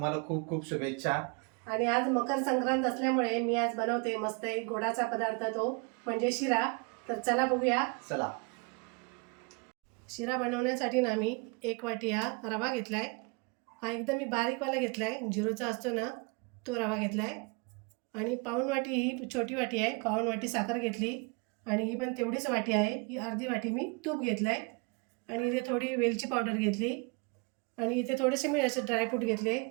खूप खूप शुभेच्छा. आणि आज मकर संक्रांत असल्यामुळे मी आज बनवते मस्त एक गोडाचा पदार्थ, तो म्हणजे शिरा. तर चला बघूया. चला. शिरा बनवण्यासाठी ना मी 1 वाटी हा रवा घेतलाय. हा एकदम मी बारीकवाला घेतलाय, झिरोचा असतो ना तो रवा घेतलाय. आणि पाऊण वाटी ही छोटी वाटी आहे, पाऊण वाटी साखर घेतली. आणि ही पण तेवढीच वाटी आहे, ही अर्धी वाटी मी तूप घेतलाय. आणि इथे थोडी वेलची पावडर घेतली. आणि इथे थोडेसे मी असे ड्रायफ्रूट घेतले,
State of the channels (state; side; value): quieter; left; 31.8 dB